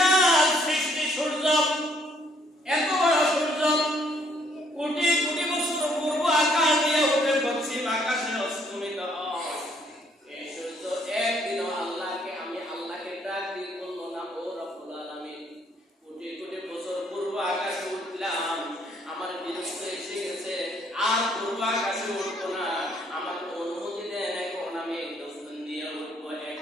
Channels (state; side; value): normal; both; correlation 0.66